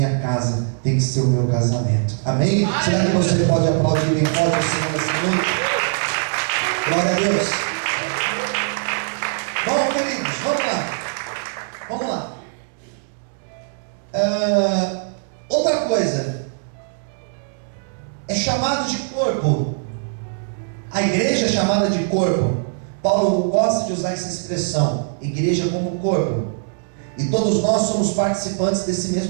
casa, tem que ser o meu casamento. Amém? Será que você pode aplaudir bem forte o Senhor nessa noite? Glória a Deus. Bom, queridos, vamos lá. Outra coisa, é chamado de corpo. A igreja é chamada de corpo. Paulo gosta de usar essa expressão, igreja como corpo. E todos nós somos participantes desse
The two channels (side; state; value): left; silent; digital silence